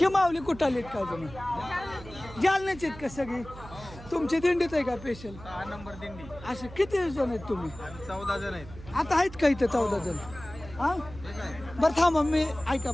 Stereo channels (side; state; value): right; noise; hum, 16 dB below the sound